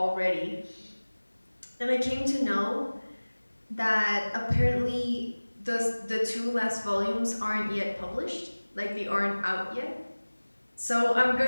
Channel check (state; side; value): inverted; both; correlation -1.00